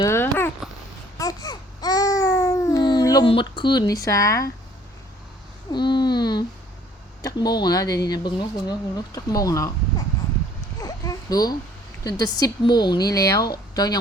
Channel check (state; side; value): normal; both; correlation 0.58